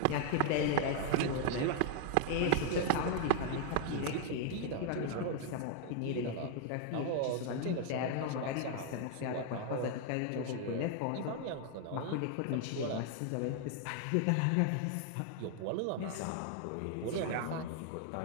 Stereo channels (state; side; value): different; both; correlation 0.00